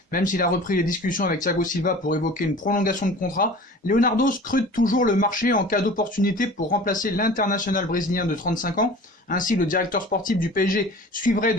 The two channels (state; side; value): normal; both; correlation 0.41